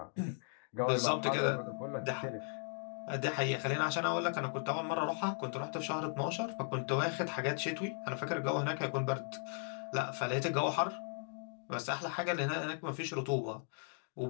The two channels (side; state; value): right; silent; 53 dB below the other